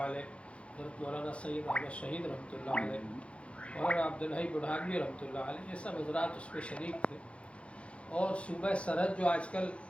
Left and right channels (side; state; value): right; late; 0.061 ms